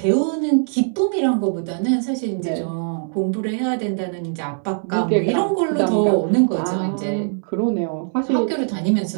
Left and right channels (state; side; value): silent; left; 63 dB below the other